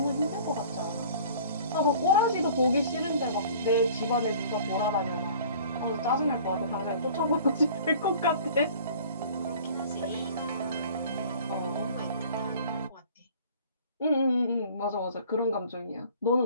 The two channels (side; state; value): both; inverted; correlation -0.48